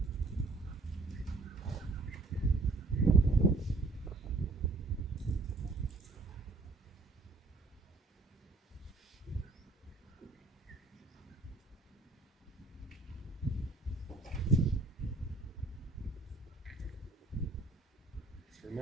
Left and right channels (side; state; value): left; quieter; 3.3 dB